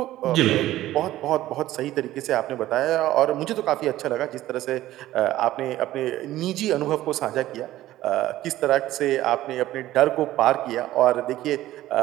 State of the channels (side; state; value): left; quieter; 14.9 dB